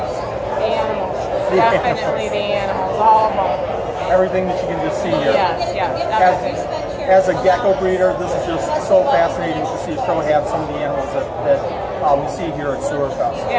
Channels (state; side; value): identical; both; correlation 1.00